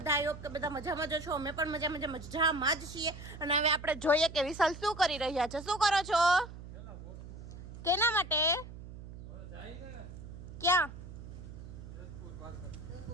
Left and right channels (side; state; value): right; noise; hum, 13 dB below the sound